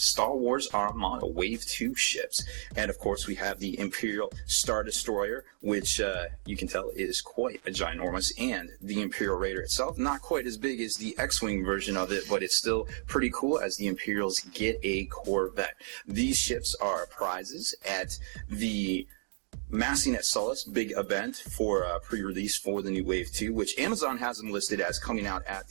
Wars Armada Wave 2 ships. And of course, we have the Imperial Star Destroyer, which you can tell is quite a ginormous, and the Imperial Raider itself, not quite as big as the X-Wing version of it, but it's still pretty cool as the Imperials get a Corvette. These ships are prizes at the Massing at Sullust big event for pre-release for the new Wave 2, which Amazon has them listed as coming out at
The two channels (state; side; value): silent; left; digital silence